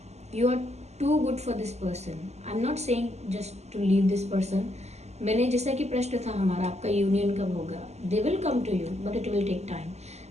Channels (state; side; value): late; left; 0.32 ms